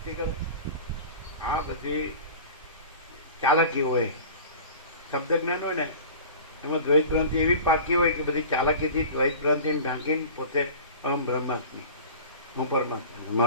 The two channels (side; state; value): both; inverted; correlation -0.38